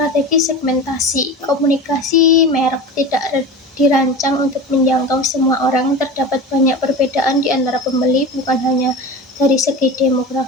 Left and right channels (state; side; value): normal; both; correlation 0.30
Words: segmentasi. Komunikasi merek tidak dirancang untuk menjangkau semua orang. Terdapat banyak perbedaan di antara pembeli, bukan hanya dari segi